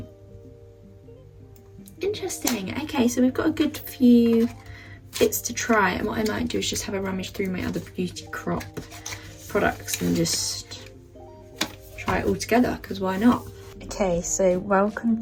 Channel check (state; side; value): identical; both; correlation 1.00